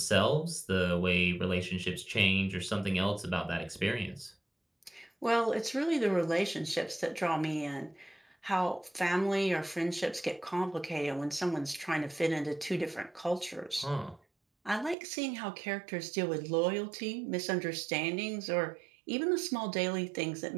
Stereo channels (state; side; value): drops out; left; at 15.0 s